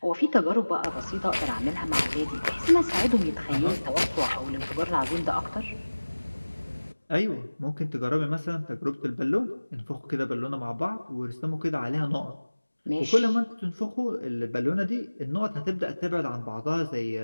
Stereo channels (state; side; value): inverted; both; correlation -1.00